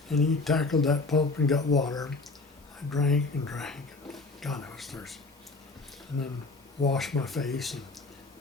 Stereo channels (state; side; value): quieter; right; 3.6 dB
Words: And he tackled that pump and got water. I drank and drank. God, I was thirsty. And then washed my face. And